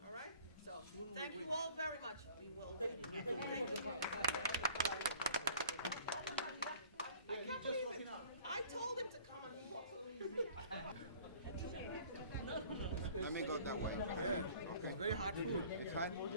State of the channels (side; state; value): both; inverted; correlation -0.51